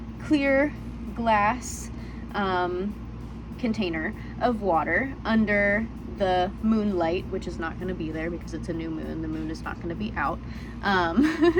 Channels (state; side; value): identical; both; correlation 1.00